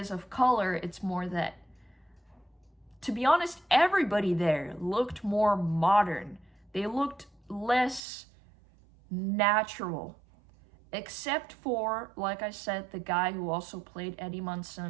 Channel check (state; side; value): drops out; left; at 8.0 s